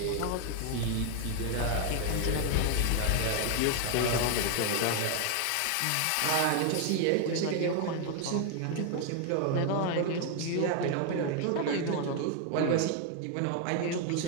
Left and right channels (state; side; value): different; both; correlation 0.00